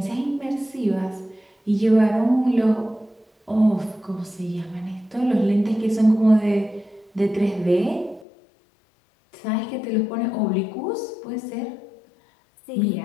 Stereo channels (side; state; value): right; drops out; at 8.2 s